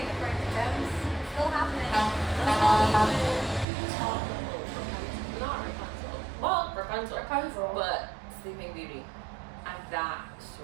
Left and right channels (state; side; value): drops out; left; at 3.7 s